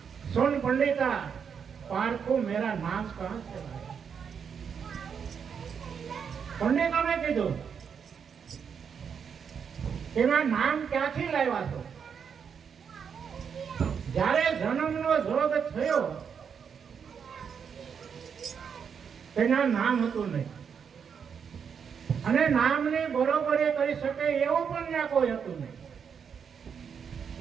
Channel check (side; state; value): left; quieter; 6.9 dB